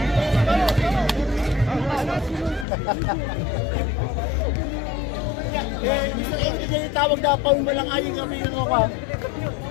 Hindi tawag na paun mo lang ayong kami yung ako.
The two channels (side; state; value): right; drops out; at 2.7 s